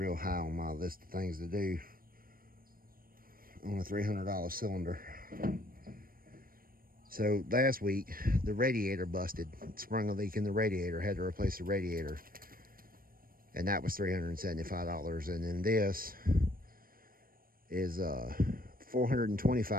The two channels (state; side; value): late; left; 0.41 ms